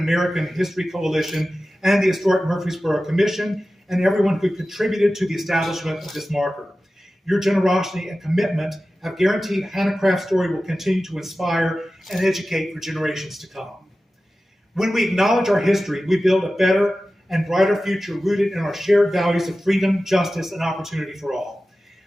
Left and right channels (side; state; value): both; normal; correlation 0.95